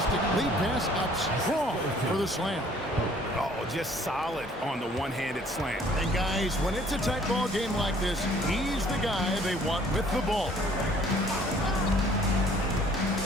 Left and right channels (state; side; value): normal; both; correlation 0.57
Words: lead pass up strong for the slam. Oh, just solid on the one-handed slam. And guys, when it's a tight ball game like this, he's the guy they want with the ball.